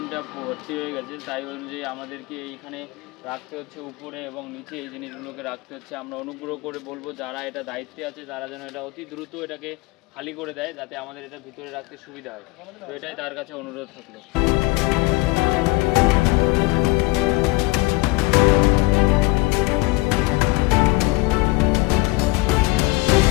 ভর্তি হয়ে গেছে, তাই অনুযায়ী আমাদেরকে এইখানে রাখতে হচ্ছে উপরে এবং নিচে এই জিনিসগুলোকে রাখতে হচ্ছে। আমরা অনুগ্রহ করে বলবো যারা এটা দায়িত্বে আছে তারা যেন এটা অতি দ্রুত এটাকে খালি করে দেয়, যাতে আমাদের এটা ভিতরে রাখতে সুবিধা হয়। তো এটাই তার কাছে অনুরোধ থাকলো।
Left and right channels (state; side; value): quieter; right; 23.1 dB